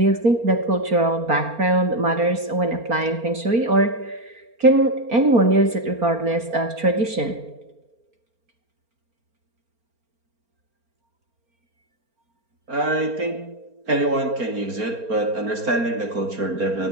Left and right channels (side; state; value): left; late; 4.3 ms